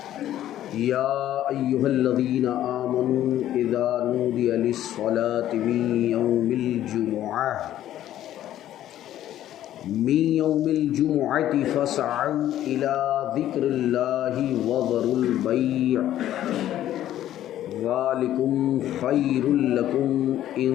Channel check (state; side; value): quieter; right; 12.5 dB